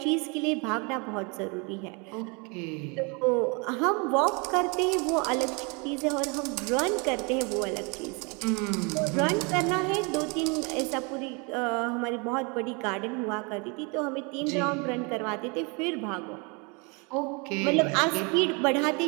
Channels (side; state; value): left; quieter; 31.4 dB